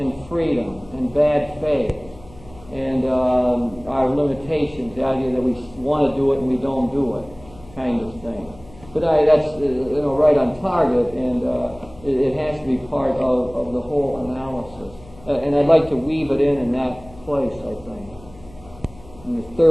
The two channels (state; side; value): noise; left; hum, 21 dB below the sound